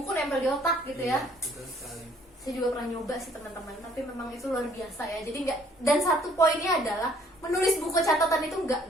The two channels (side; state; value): both; normal; correlation 0.61